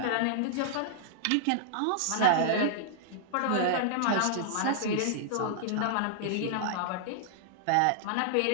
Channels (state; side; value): different; both; correlation -0.01